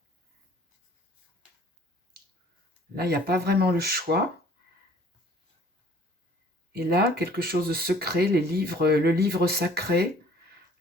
Là, il n'y a pas vraiment le choix. Et là, quelque chose de secret, les livres, le livre sacré.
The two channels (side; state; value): both; normal; correlation 0.54